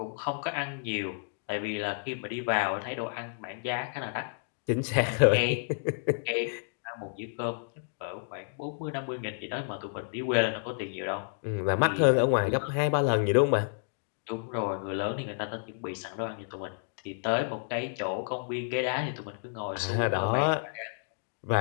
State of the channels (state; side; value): silent; right; digital silence